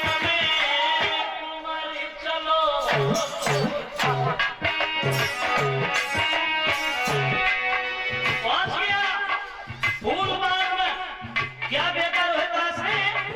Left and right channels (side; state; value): both; identical; correlation 1.00